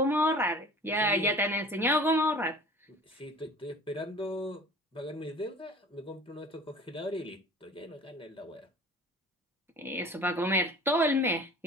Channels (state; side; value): normal; both; correlation 0.43